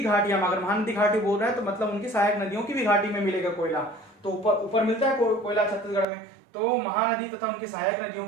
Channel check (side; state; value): left; drops out; at 6.1 s